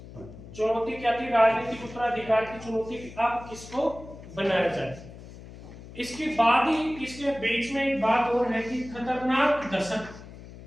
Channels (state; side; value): noise; left; hum, 16 dB below the sound